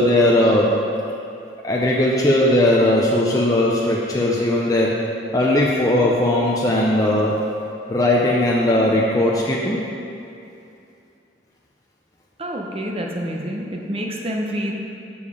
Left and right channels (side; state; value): both; normal; correlation 0.50